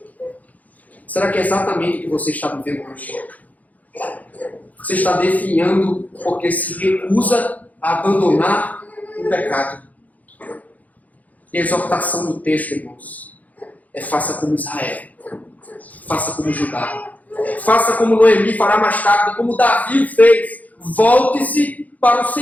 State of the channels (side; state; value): right; late; 0.077 ms